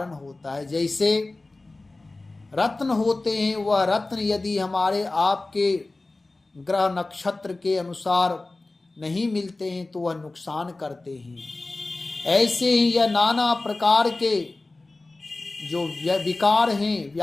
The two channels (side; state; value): right; quieter; 3.1 dB